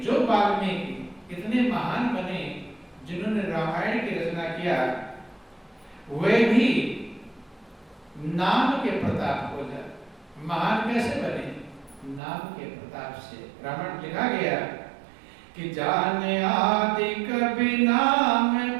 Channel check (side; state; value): left; drops out; at 12.2 s